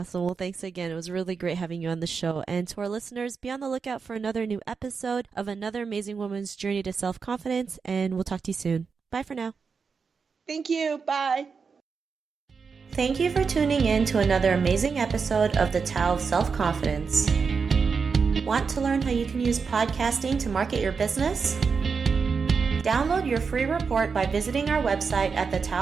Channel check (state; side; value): quieter; left; 5.4 dB